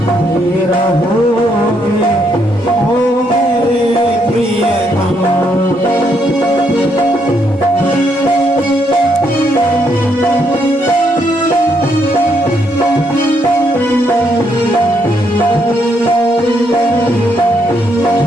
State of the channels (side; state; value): both; normal; correlation 0.75